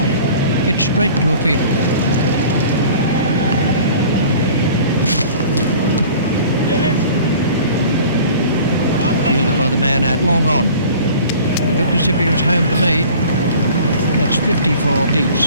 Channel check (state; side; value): inverted; both; correlation -0.45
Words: It's straight to a field. Fielded by the man at long on. It looked as if he was home to me. That's 54